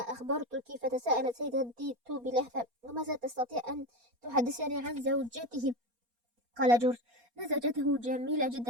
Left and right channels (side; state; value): left; late; 4.2 ms